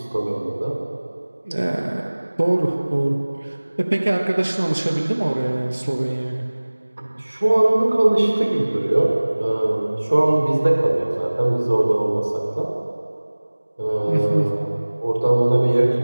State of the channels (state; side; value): inverted; both; correlation -1.00